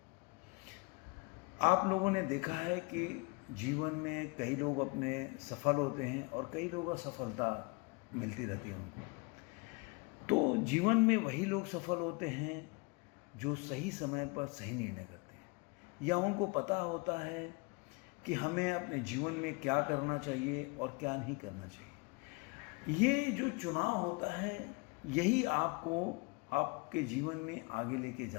आप लोगों ने देखा है कि जीवन में कई लोग अपने सफल होते हैं और कई लोग असफलता मिलती रहती है उनको। तो जीवन में वही लोग सफल होते हैं जो सही समय पर सही निर्णय करते हैं, या उनको पता होता है कि हमें अपने जीवन में क्या करना चाहिए और क्या नहीं करना चाहिए। ये जो चुनाव होता है, यही आपको आपके जीवन में आगे लेके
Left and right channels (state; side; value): quieter; right; 29.6 dB